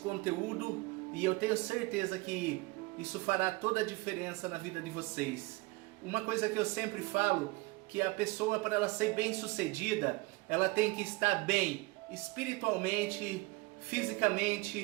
E eu tenho certeza que isso fará toda a diferença na vida de vocês. Uma coisa que eu sempre falo, que a pessoa, para ela ser bem sucedida, ela tem que estar bem espiritualmente,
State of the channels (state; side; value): quieter; left; 23.3 dB